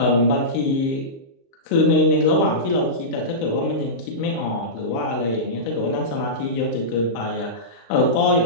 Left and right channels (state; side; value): late; right; 35 ms